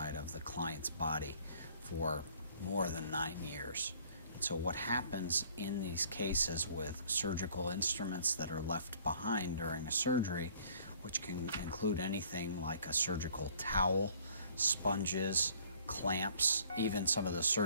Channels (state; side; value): inverted; both; correlation -0.57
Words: of the client's body for more than 9 years. And so what happens in these cases with surgical instruments that are left behind during a surgery, which can include anything like a surgical towel, sponges, clamps, even some of the